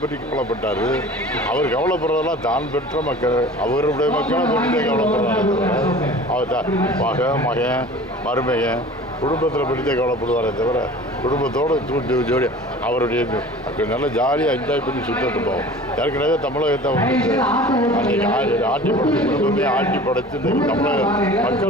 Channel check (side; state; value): both; normal; correlation 0.42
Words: பற்றி கவலைப்பட்டார்? அவர் கவலைப்படுறதெல்லாம் தான் பெற்ற மக்கள், அவருடைய மக்களை பற்றி கவலைப்படுறாரு. அவர் மகன் மருமகன் குடும்பத்தில் பற்றித்தே கவலைப்படுவாரே தவிர குடும்பத்தோடு ஜோடி அவருடைய நல்லா ஜாலியாக என்ஜாய் பண்ணி சுற்றிட்டு போவோம். ஏற்கனவே தமிழகத்தை அன்றைக்கி ஆட்டி படைச்சு குடும்பமே ஆட்டி படைச்சு தமிழக